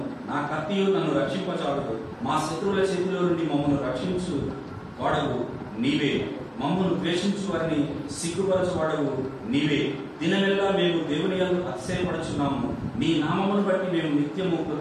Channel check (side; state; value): both; identical; correlation 1.00